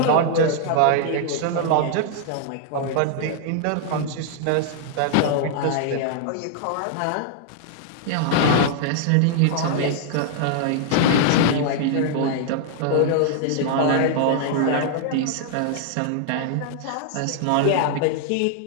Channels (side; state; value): both; different; correlation -0.01